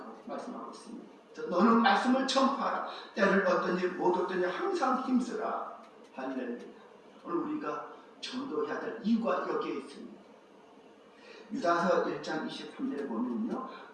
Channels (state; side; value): identical; both; correlation 1.00